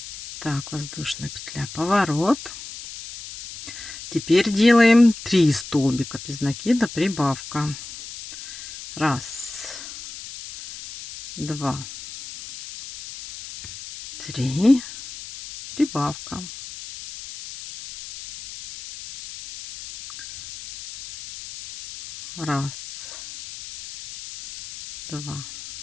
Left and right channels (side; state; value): left; noise; hiss, 13 dB below the sound